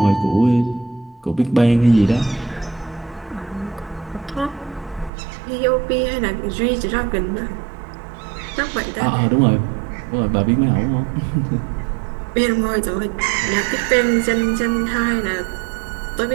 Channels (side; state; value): left; drops out; at 5.1 s